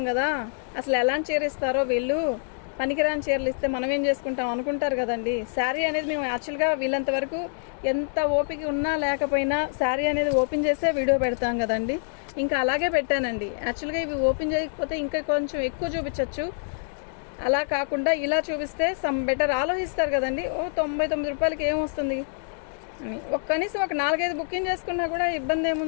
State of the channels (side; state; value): right; silent; digital silence